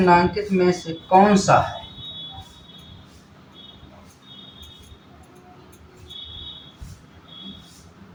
में से कौन सा है?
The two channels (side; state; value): both; identical; correlation 1.00